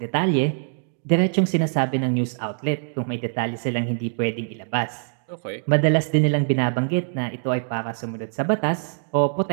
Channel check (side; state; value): left; silent; digital silence